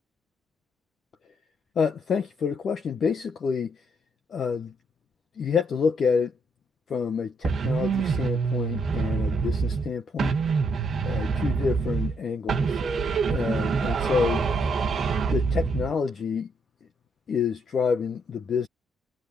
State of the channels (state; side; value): normal; both; correlation 0.73